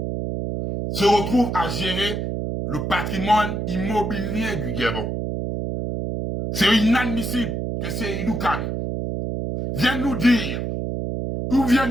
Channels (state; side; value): noise; right; hum, 3 dB below the sound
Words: se retrouve à gérer le patrimoine immobilier du Gabon. C'est inadmissible que Seydou Khan vienne nous dire, ou